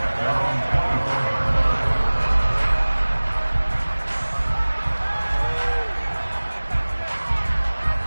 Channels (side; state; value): both; inverted; correlation -1.00